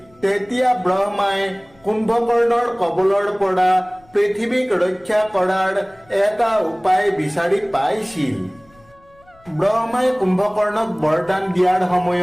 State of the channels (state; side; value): noise; left; rumble, 30 dB below the sound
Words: তেতিয়া ব্ৰহ্মাই কুম্ভকৰ্ণৰ কবলৰ পৰা পৃথিৱীক ৰক্ষা কৰাৰ এটা উপায় বিচাৰি পাইছিল। ব্ৰহ্মাই কুম্ভকৰ্ণক বৰদান দিয়াৰ